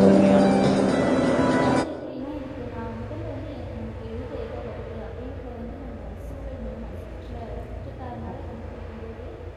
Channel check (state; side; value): identical; both; correlation 1.00